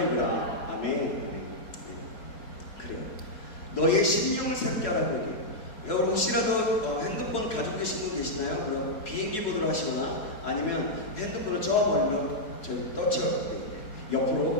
입으라. 아멘. 그래요. 너희의 심령을 새롭게 하라고 얘기해요. 여러분 혹시라도 핸드폰 가지고 계신 분 계시나요? 그럼 비행기 모드로 하시거나 아니면 핸드폰을 저 멀리로 저희 떠쳐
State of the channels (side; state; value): right; late; 4.7 ms